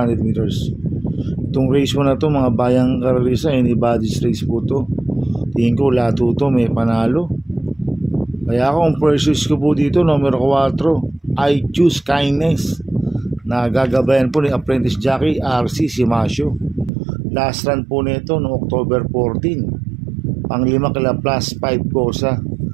meters. Itong race mo na to mga bayang karalisa, anybody's race po to. Tingin ko lahat to may panalo. Kaya ako ang purchase ko po dito, numero 4, I Choose Kindness, na gagabayan po ni apprentice jockey RC Simasio. Last run po nito noong October 14. Ang 5 kila plus 5 kosa.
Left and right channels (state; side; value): drops out; left; at 16.9 s